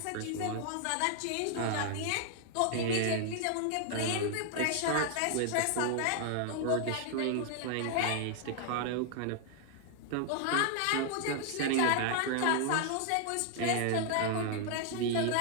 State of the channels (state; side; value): different; both; correlation 0.00